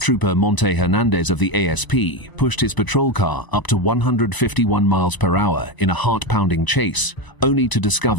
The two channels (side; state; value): right; late; 1.0 ms